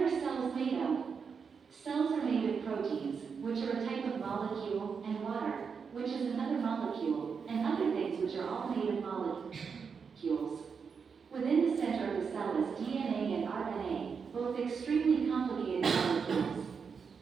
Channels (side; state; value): left; quieter; 5.9 dB